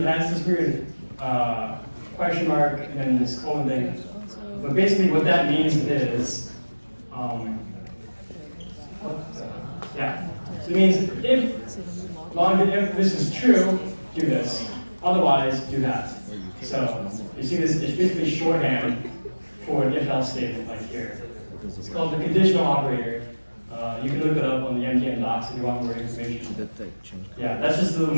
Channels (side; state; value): both; inverted; correlation -1.00